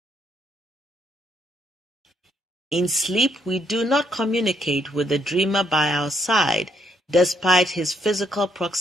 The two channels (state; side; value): normal; both; correlation 0.72